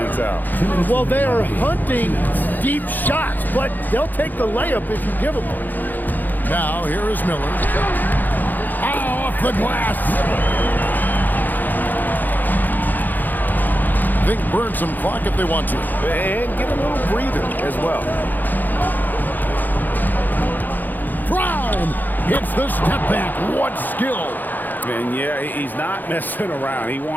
out. Well, they are hunting deep shots, but they'll take the layup if you give them one. Now, here is Miller. Off the glass. They can burn some clock if they want to. And get a little breather as well. Brown hits the step back. What skill. And yeah, he's not messing around. He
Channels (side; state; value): right; late; 0.086 ms